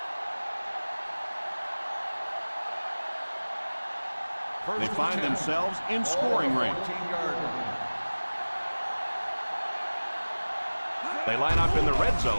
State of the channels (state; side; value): inverted; both; correlation -1.00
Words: They find themselves in scoring range. They line up in the red